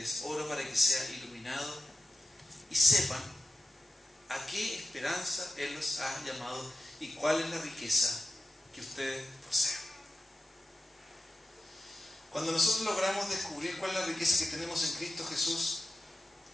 oro para que sea iluminado y sepan a qué esperanza Él los ha llamado y cuál es la riqueza que ustedes poseen. Cuando nosotros logramos descubrir cuál es la riqueza que tenemos en Cristo Jesús,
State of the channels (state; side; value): normal; both; correlation 0.92